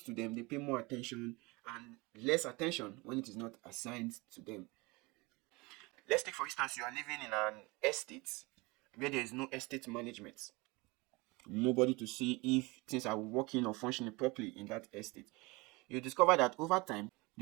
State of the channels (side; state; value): left; quieter; 24.9 dB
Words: to them, they pay more attention and less attention when it is not assigned to them. Let's take, for instance, you are living in an estate where there is no estate management. Nobody to see if things are working or functioning properly in that estate. You discover that over time,